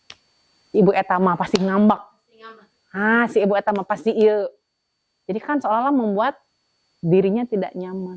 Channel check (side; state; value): both; identical; correlation 1.00